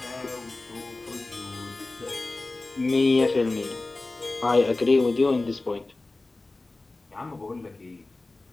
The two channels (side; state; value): right; quieter; 3.2 dB